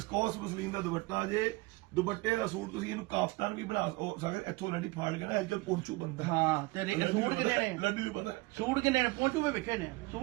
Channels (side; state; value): left; quieter; 23.1 dB